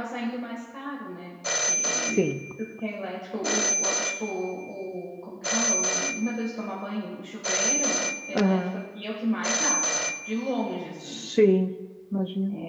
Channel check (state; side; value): identical; both; correlation 1.00